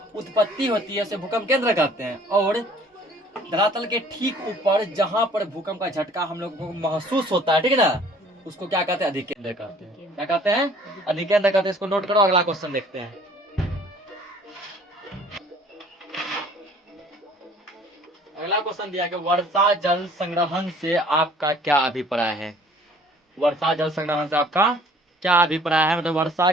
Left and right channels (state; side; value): normal; both; correlation 0.54